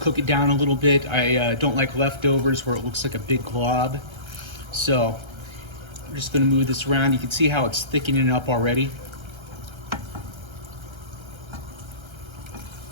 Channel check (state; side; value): late; left; 1.3 ms